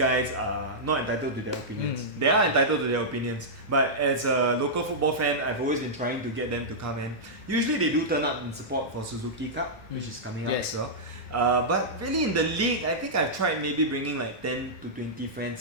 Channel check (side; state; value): both; normal; correlation -0.11